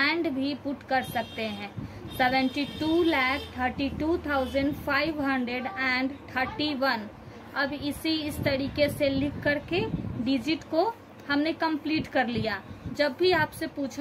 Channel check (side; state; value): both; identical; correlation 1.00